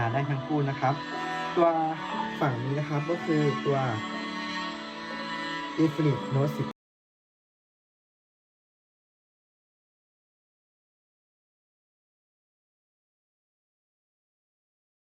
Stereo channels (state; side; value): identical; both; correlation 1.00